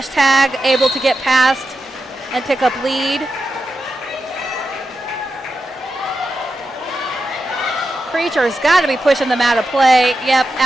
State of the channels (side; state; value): both; normal; correlation 0.89